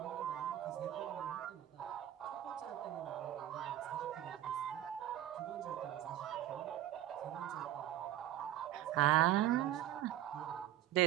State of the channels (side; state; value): left; quieter; 12.6 dB